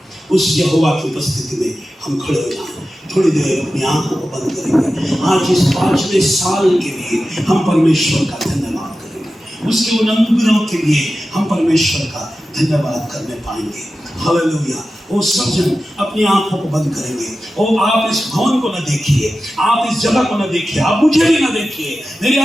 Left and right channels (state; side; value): normal; both; correlation 0.93